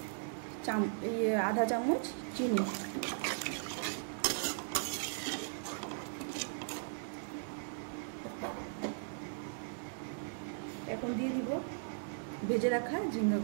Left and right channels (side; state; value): left; silent; digital silence